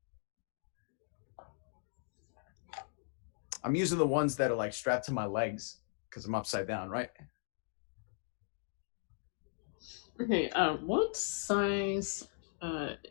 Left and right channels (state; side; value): silent; right; digital silence